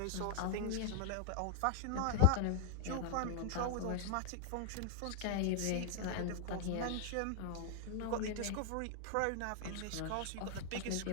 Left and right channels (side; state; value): both; different; correlation -0.01